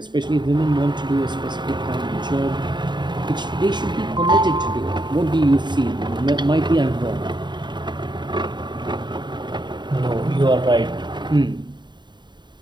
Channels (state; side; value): late; left; 0.22 ms